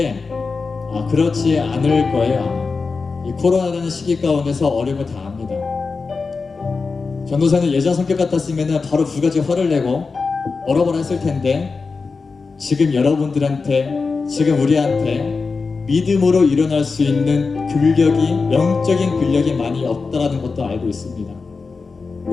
그렇지 않을 거예요. 이 코로나라는 시기 가운데서 어려움을 다 압니다. 전도사는 예전 성격 같았으면 바로 두 가지 화를 내고 얼어버려 했을 텐데 지금 여러분들한테, 지금 우리한테 믿음으로 일어날 수 있는 영적인 근력이 많이 없다라는 것도 알고 있습니다.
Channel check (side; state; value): right; quieter; 4.5 dB